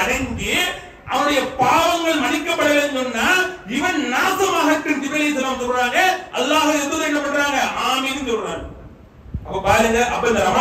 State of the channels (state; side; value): identical; both; correlation 1.00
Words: அடங்கி அவனுடைய பாவங்கள் மன்னிக்கப்படவில்லைன்னு சொன்னா இவன் நாசமாகட்டும் ஜிப்ரீல் அலைஹிஸ்ஸலாம் சொல்றாங்க. அல்லாஹ்வுடைய தூதர் என்ன பண்றாங்க? ஆமீன் சொல்றாங்க. அப்ப பாருங்க, அப்ப இந்த